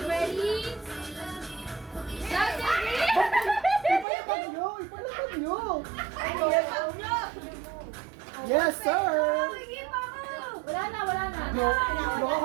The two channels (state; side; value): drops out; left; at 4.0 s